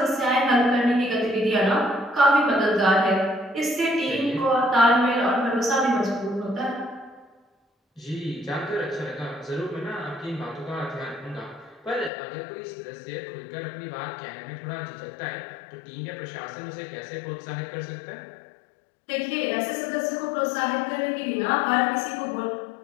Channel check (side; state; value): right; drops out; at 12.1 s